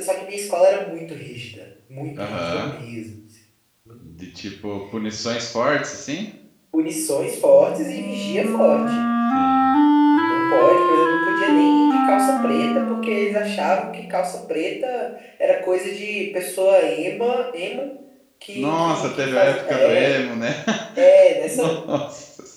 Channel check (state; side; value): identical; both; correlation 1.00